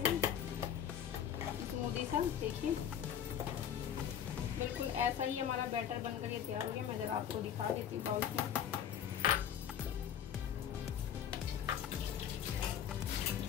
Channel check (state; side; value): quieter; right; 9.2 dB